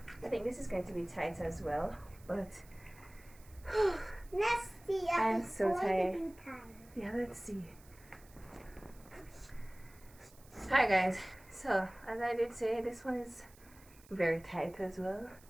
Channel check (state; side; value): noise; right; hiss, 25 dB below the sound